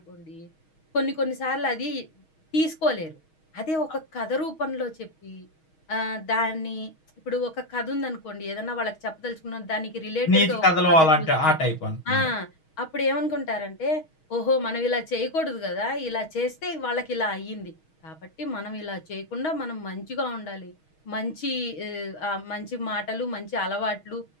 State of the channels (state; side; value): late; right; 6.3 ms